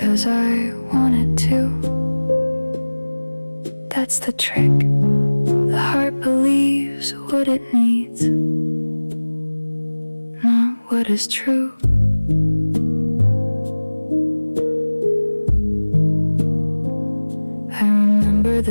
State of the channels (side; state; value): both; inverted; correlation -1.00